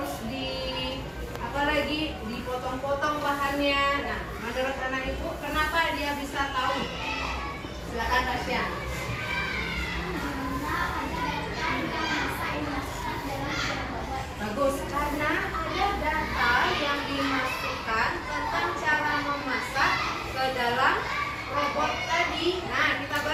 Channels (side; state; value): both; identical; correlation 1.00